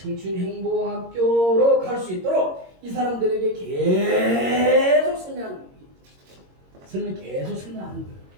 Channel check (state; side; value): late; left; 22 ms